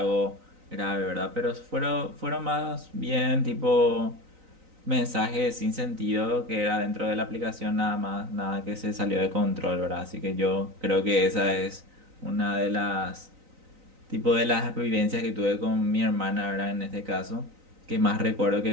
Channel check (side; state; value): left; late; 3.9 ms